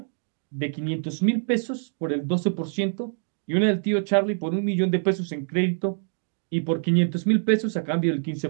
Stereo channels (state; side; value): silent; left; digital silence